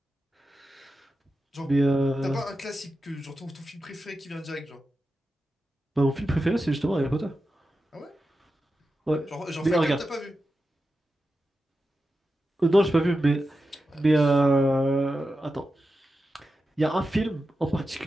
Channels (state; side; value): normal; both; correlation 0.91